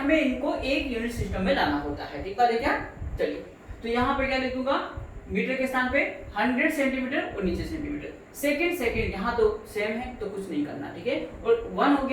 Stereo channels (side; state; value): both; identical; correlation 1.00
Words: इनको एक यूनिट सिस्टम में लाना होता है, ठीक बात है क्या? चलिए तो यहाँ पे क्या लिख दूंगा, मीटर के स्थान पे 100 सेंटीमीटर और नीचे सेंटीमीटर। सेकंड यहाँ तो सेम है तो कुछ नहीं करना, ठीक है। और 1 हो